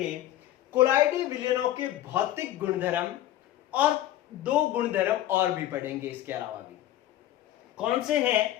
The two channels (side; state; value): right; quieter; 13.6 dB